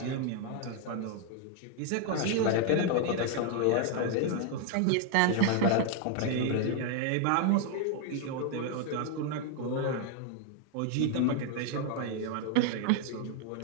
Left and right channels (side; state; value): both; different; correlation 0.00